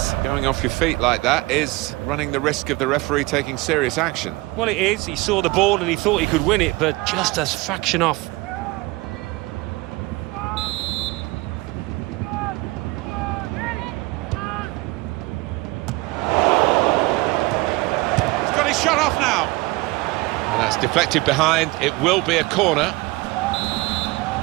going off your feet like that is running the risk of the referee taking serious action. Well, it is. He saw the ball and he thought he could win it, but just a fraction off. He's got his shot off now. And that's deflected behind. It will be a corner.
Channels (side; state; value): left; quieter; 22.0 dB